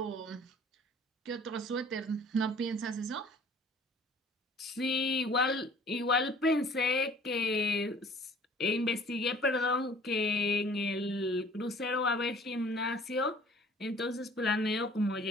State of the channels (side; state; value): both; normal; correlation 0.52